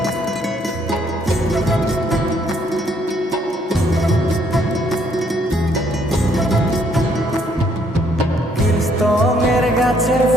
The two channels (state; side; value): normal; both; correlation 0.68